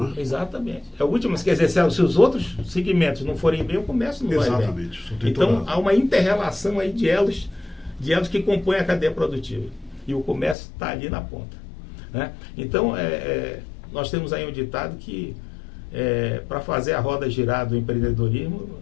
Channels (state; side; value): drops out; right; at 10.6 s